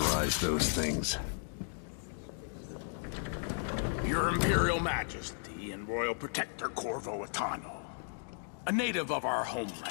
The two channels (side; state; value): right; silent; digital silence